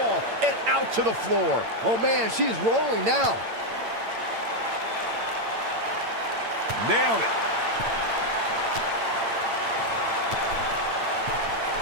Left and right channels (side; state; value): left; late; 8.8 ms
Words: and out to the floor. Oh man, she's rolling now. Nailed it.